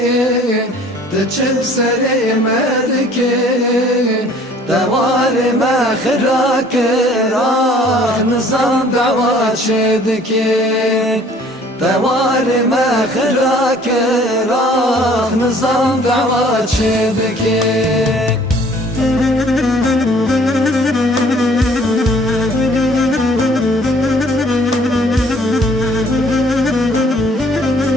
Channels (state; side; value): normal; both; correlation 0.55